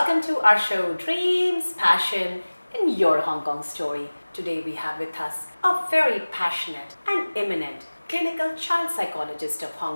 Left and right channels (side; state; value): both; inverted; correlation -1.00